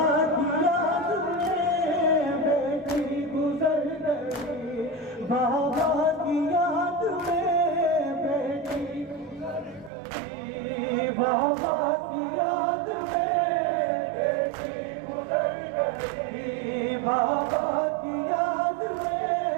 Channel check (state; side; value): drops out; left; at 9.9 s